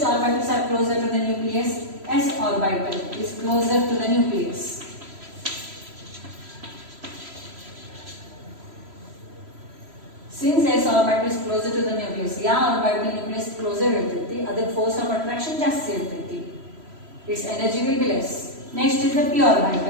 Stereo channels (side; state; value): left; late; 3.0 ms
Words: orbitals are closer to the nucleus? S orbital is closer to the nucleus. Since S orbital is closer to the nucleus, या orbital nucleus closer ಇರ್ತೈತಿ, ಅದಕ್ಕೆ force of attraction ಜಾಸ್ತಿ ಇರ್ತೈತಿ, its energy will be less. Next is the p